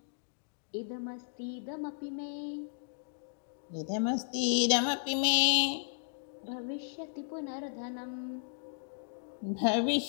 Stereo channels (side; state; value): right; silent; digital silence